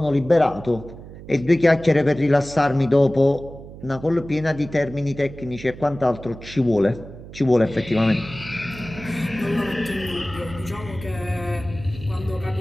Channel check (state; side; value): noise; right; hum, 15 dB below the sound